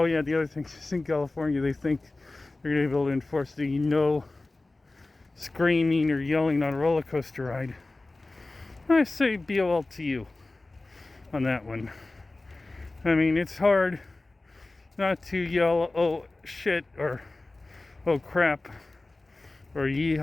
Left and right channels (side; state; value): right; quieter; 3.1 dB